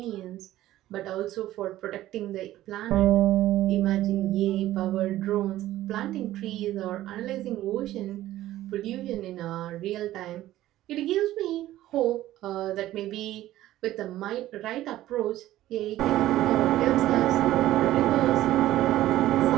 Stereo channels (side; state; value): left; quieter; 14.6 dB